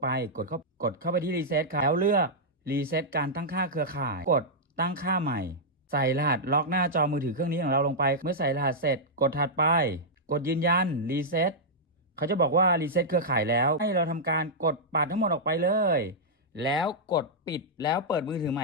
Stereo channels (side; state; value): both; normal; correlation -0.08